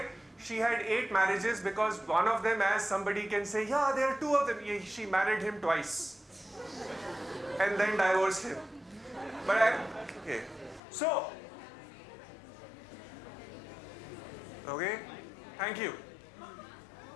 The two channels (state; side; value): drops out; right; at 10.8 s